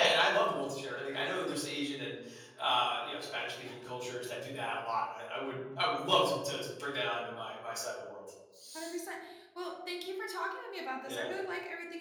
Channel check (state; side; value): identical; both; correlation 1.00